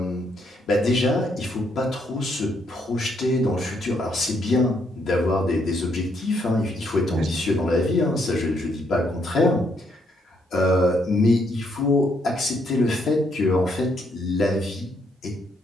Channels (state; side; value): normal; both; correlation 0.73